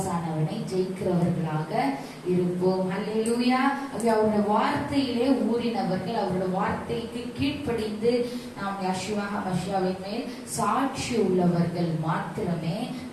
ஜெயிக்கிறவர்களாக இருப்போம். அல்லேலூயா. அவருடைய வார்த்தையிலே ஊறினவர்கள், அவருடைய வார்த்தைக்கு கீழ்ப்படிந்து நாம் யெஷுவா ஹமஷியாவின் மேல் சாட்சி உள்ளவர்கள் மாத்திரமே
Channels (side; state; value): both; identical; correlation 1.00